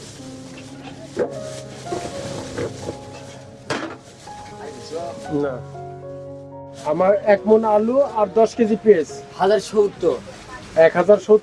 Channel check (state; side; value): identical; both; correlation 1.00